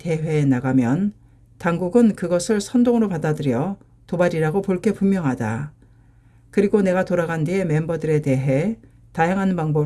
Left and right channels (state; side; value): identical; both; correlation 1.00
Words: 나가면 당국은 그것을 선동으로 받아들여 도발이라고 볼 게 분명하다. 그리고 내가 돌아간 뒤에 멤버들에 대해 다양한